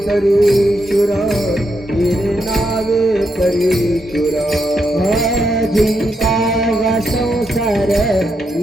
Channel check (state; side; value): normal; both; correlation 0.81